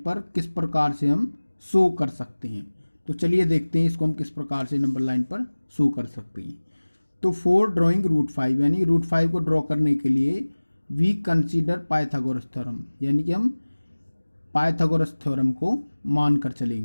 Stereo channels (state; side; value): inverted; both; correlation -1.00